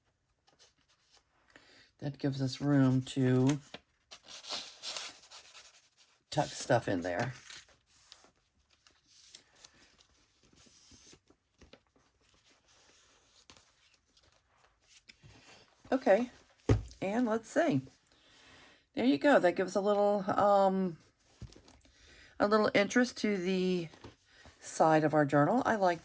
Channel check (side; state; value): both; identical; correlation 1.00